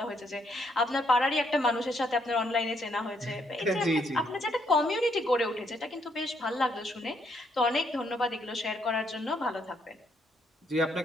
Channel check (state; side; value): normal; both; correlation 0.73